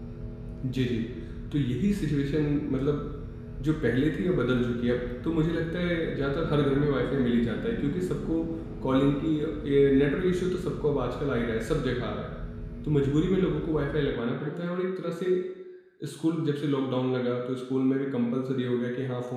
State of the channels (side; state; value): both; identical; correlation 1.00